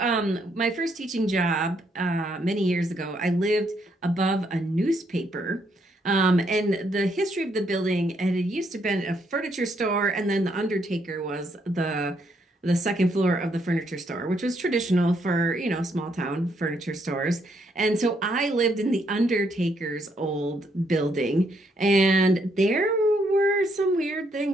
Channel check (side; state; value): both; normal; correlation 0.73